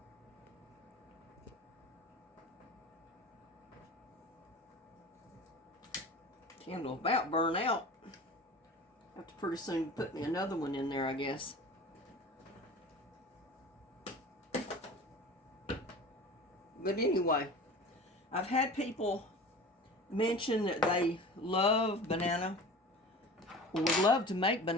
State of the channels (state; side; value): normal; both; correlation 0.36